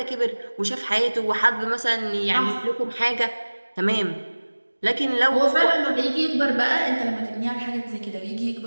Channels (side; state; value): both; inverted; correlation -1.00